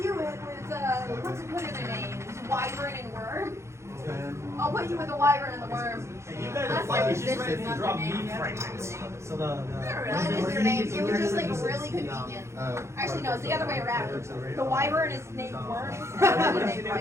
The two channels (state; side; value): late; left; 0.13 ms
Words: you with what's it put in their names? Wyvern and Worm. 10. I'll put you with the Wyvern and the Worm. You guys are like, you just ready to drop me pregnant. So the That is their names. It was just like really convenient. Actually, no, it's the other way around. The Wyvern is named Worm, and the other named